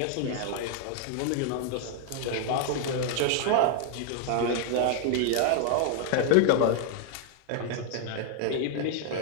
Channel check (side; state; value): both; different; correlation 0.00